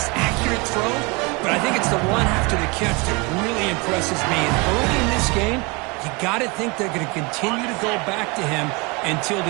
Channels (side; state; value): left; quieter; 27.9 dB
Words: accurate throw. But I think it's the run after the catch that really impresses me. And early in this game, you got to think they're going to continue to go back to him until